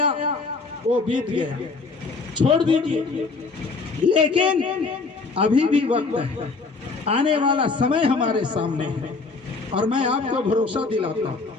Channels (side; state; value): right; quieter; 4.1 dB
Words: वो बीत गया, छोड़ दीजिए, लेकिन अभी भी वक्त है, आने वाला समय हमारे सामने है। और मैं आपको भरोसा दिलाता हूँ,